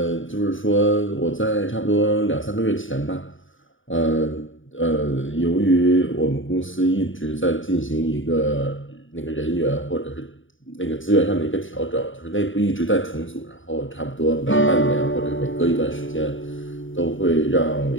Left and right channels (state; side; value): late; right; 0.57 ms